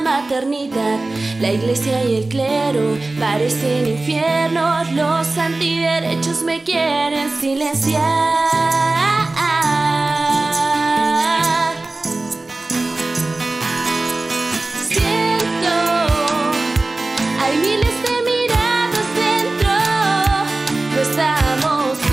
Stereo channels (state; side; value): quieter; left; 3.1 dB